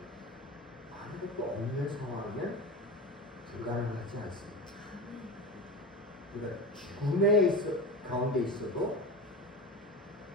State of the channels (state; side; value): normal; both; correlation 0.26